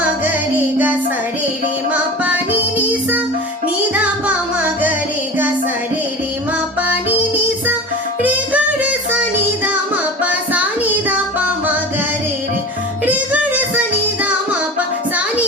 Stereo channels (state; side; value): normal; both; correlation 0.34